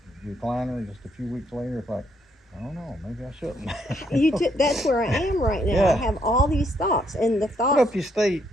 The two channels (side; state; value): both; normal; correlation 0.73